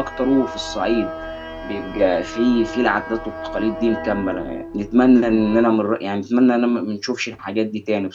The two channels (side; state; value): both; identical; correlation 1.00